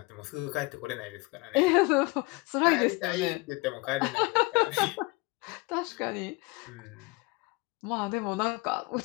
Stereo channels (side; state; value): right; quieter; 25.6 dB